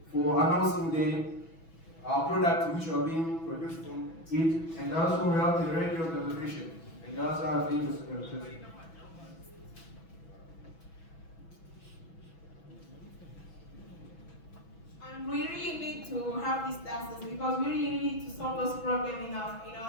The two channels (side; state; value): right; late; 6.1 ms